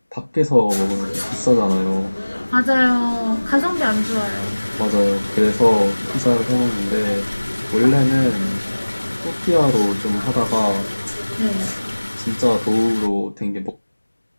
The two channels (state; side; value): inverted; both; correlation -1.00